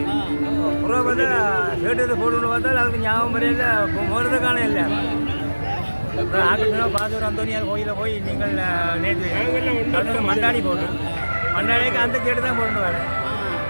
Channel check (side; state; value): both; inverted; correlation -1.00